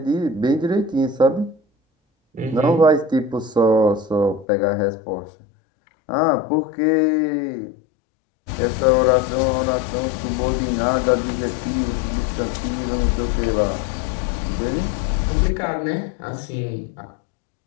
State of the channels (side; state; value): right; drops out; at 4.5 s